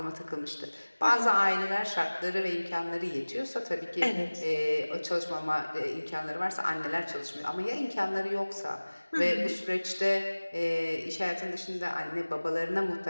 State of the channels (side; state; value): both; inverted; correlation -1.00